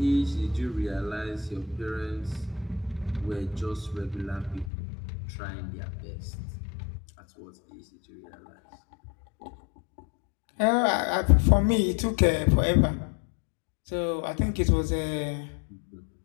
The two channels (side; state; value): right; drops out; at 4.7 s